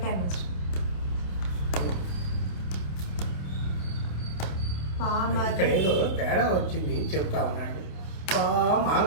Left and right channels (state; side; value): late; right; 28 ms